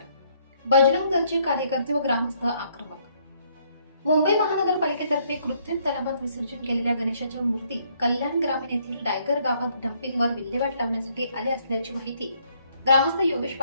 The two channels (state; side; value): inverted; both; correlation -0.68